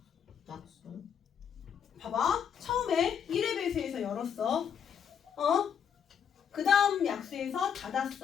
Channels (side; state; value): right; quieter; 7.9 dB